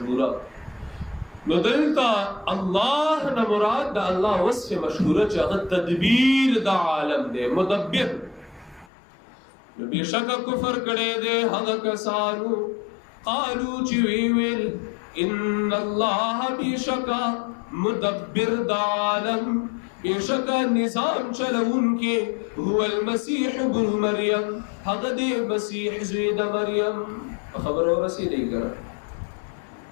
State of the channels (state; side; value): drops out; right; at 8.9 s